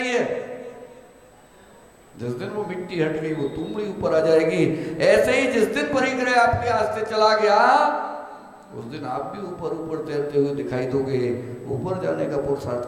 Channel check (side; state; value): both; identical; correlation 1.00